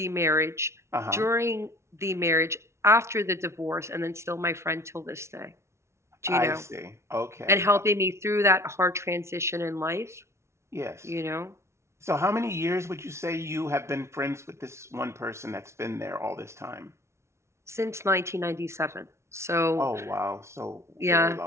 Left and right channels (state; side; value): late; left; 0.13 ms